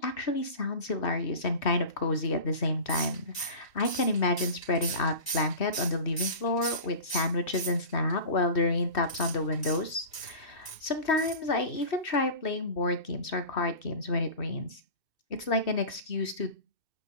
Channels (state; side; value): late; right; 2.6 ms